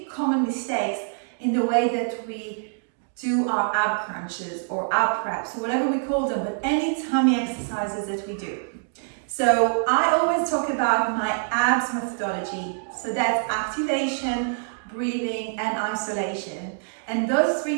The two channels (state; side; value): silent; left; digital silence